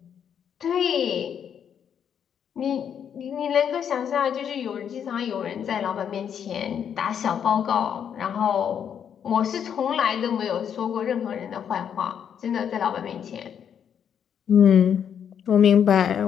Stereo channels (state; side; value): quieter; right; 8.3 dB